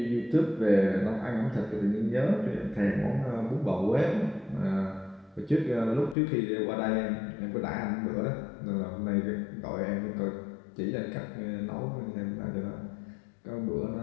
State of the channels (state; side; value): drops out; right; at 6.2 s